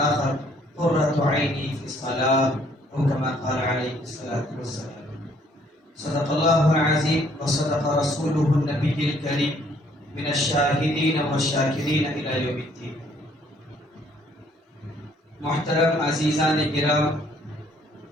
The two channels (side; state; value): both; normal; correlation 0.64